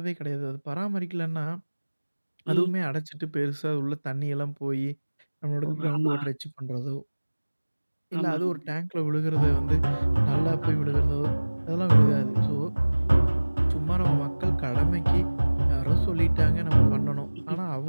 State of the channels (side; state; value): both; inverted; correlation -1.00